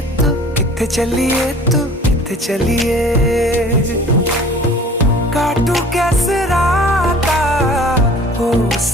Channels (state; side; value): normal; both; correlation 0.47